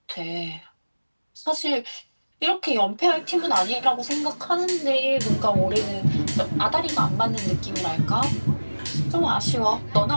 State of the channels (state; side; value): inverted; both; correlation -1.00